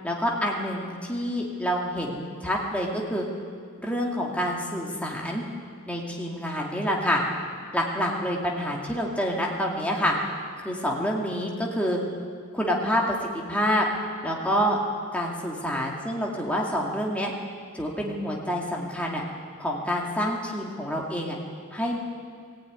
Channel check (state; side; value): normal; both; correlation 0.51